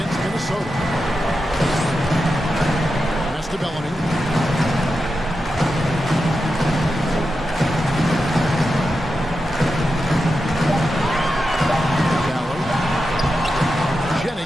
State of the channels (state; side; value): normal; both; correlation 0.89